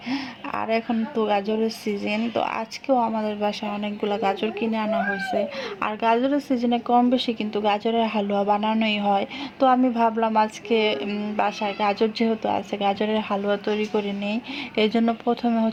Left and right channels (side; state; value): both; identical; correlation 1.00